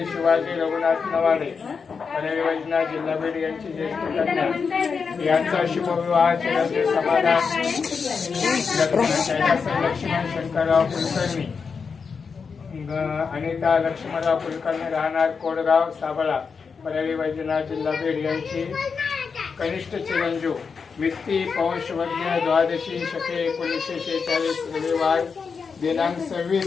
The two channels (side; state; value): right; quieter; 5.5 dB